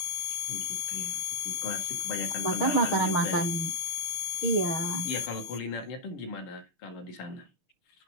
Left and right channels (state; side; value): late; right; 6.5 ms